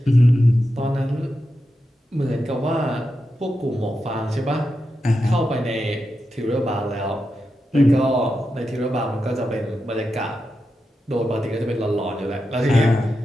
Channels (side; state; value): both; normal; correlation 0.88